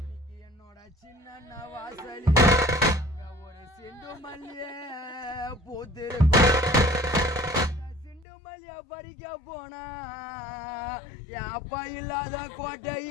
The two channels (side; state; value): right; drops out; at 8.2 s